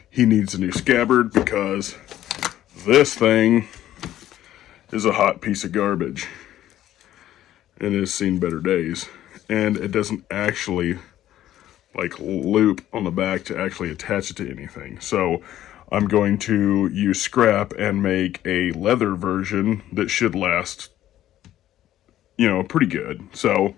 he needs a new scabbard because this thing is a hot piece of garbage and has seen better days, and it doesn't actually like loop on the back to actually attach it to anything. So I'm going to use scrap and make a leather version that should last, pretty good. So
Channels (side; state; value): right; quieter; 12.8 dB